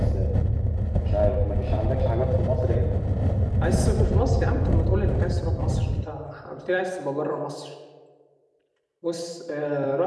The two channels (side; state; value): both; identical; correlation 1.00